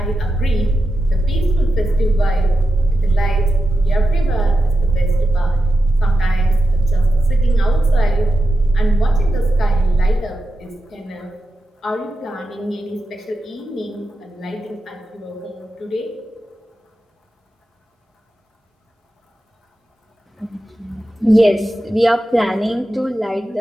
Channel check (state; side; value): normal; both; correlation 0.90